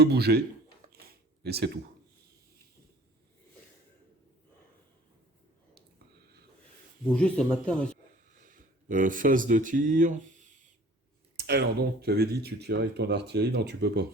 bouger, et c'est tout. Bouger, ça m'intéresse. Phase de tir. Alors donc, tu avais dit tu tirais avec ton artillerie. Non, tu peux pas.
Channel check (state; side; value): normal; both; correlation 0.49